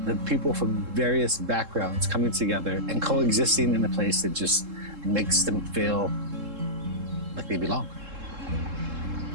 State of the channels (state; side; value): late; left; 3.7 ms